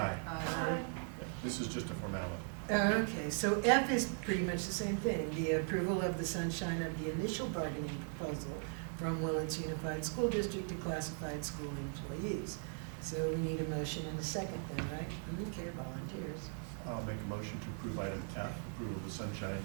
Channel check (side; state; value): left; silent; 52 dB below the other